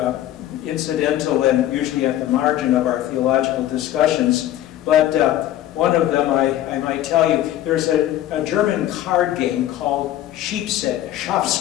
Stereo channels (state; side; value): quieter; right; 12.9 dB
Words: incidental and usually at the margin of our theological discussions, but one of them I might tell you, there's a German card game called